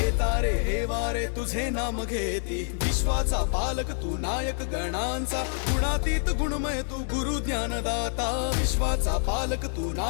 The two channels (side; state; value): right; silent; 60 dB below the other